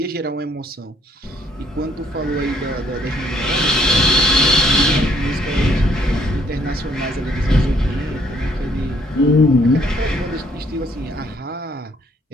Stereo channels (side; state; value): both; normal; correlation 0.66